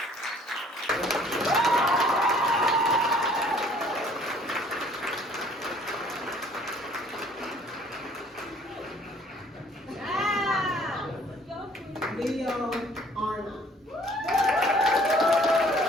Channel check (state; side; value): normal; both; correlation 0.57